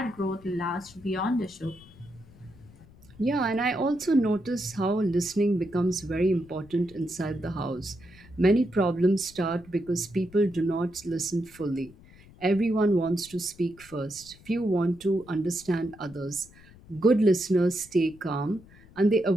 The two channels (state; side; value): noise; left; rumble, 23 dB below the sound